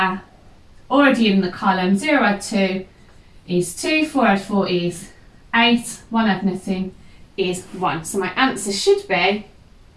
already in the column. 0 add 2 is 2, 4 add 4 is 8, 1 add nothing is 1. So my answer should be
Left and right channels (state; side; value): identical; both; correlation 1.00